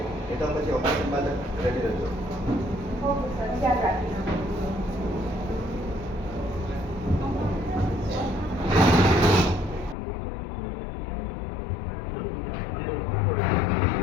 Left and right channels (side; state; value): right; drops out; at 10.0 s